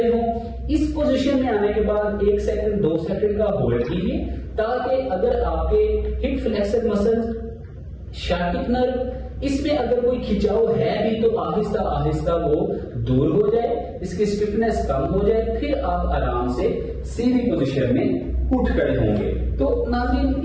ہوں. اس پوزیشن میں آنے کے بعد 1 سیکنڈ 2 سیکنڈ کا ہولڈ کیجیے تاکہ اگر آپ کے ہپ فلیکسر مسلز، شاٹک نرو، اس میں اگر کوئی کھچاؤ ہے بھی تو آہستہ آہستہ وہ دور ہو جائے، اس کی اسٹفنس کم ہو جائے، پھر آپ آرام سے سیدھی پوزیشن میں اٹھ کھڑے ہوں گے. تو ناظرین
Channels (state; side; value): identical; both; correlation 1.00